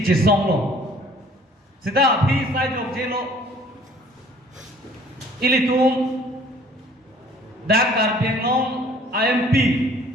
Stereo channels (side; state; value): both; normal; correlation 0.55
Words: lo sida abhi sai jok jelo ilitum dak karpiengong IMP